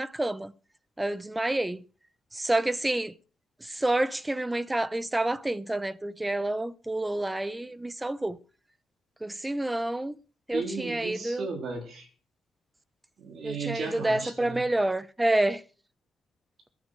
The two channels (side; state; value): both; normal; correlation 0.97